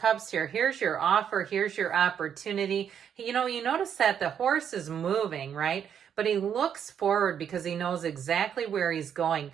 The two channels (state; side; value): quieter; left; 8.4 dB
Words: here, here's your offer, here's your opportunity. You notice that the horse is moving, right? But he looks forward because he knows exactly where he's going.